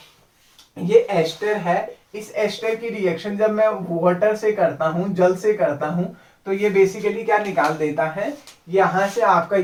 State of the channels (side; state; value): both; identical; correlation 1.00